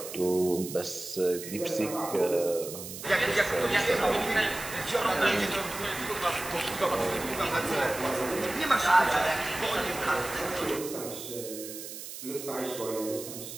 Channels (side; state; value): right; noise; hiss, 10 dB below the sound